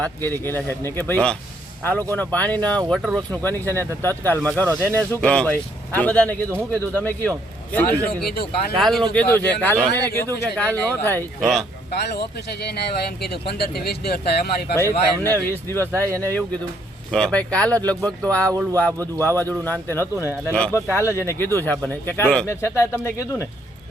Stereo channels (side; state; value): both; normal; correlation 0.68